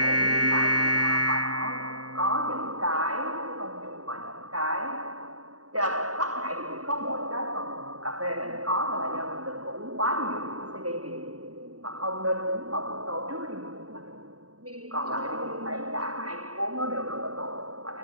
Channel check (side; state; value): left; late; 0.68 ms